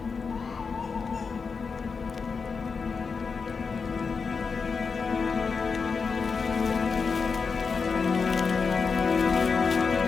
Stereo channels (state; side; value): quieter; right; 5.2 dB